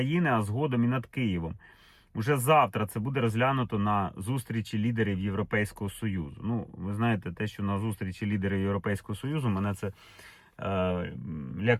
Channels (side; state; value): both; identical; correlation 1.00